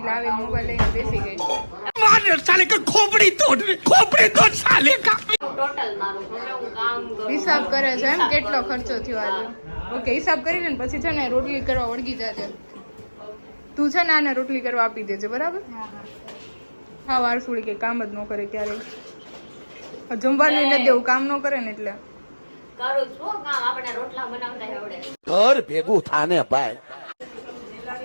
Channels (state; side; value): inverted; both; correlation -1.00